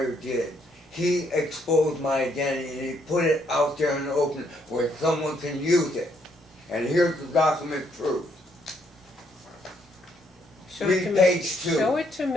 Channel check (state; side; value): normal; both; correlation 0.71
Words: did, he exposed my identity and he put it out there in the open where someone can use it. And here's the document proof. Read page 2. Show it to